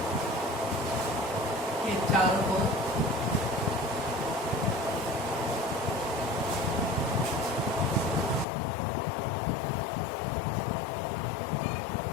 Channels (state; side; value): drops out; right; at 8.5 s